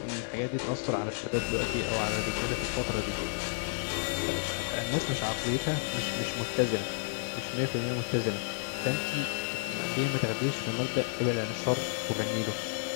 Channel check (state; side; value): silent; right; digital silence